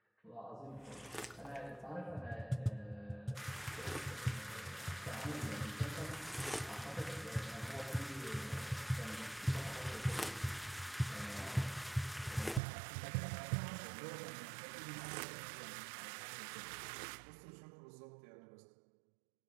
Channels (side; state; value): left; drops out; at 12.6 s